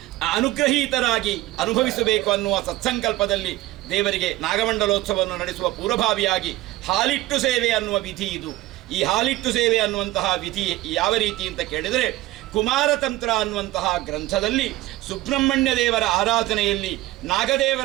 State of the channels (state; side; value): quieter; left; 17.2 dB